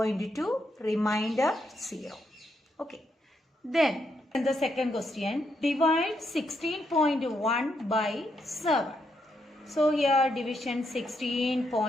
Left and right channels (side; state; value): both; normal; correlation 0.79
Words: remainder 0. Okay. Then in the second question, divide 16.1 by 7. So here division